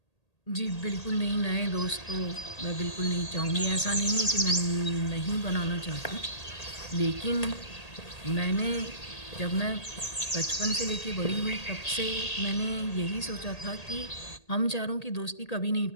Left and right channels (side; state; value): right; late; 1.8 ms